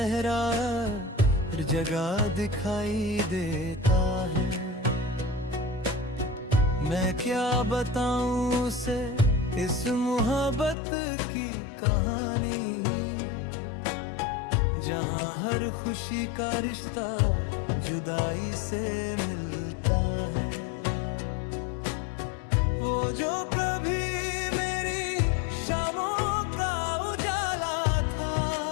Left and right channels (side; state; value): right; drops out; at 10.8 s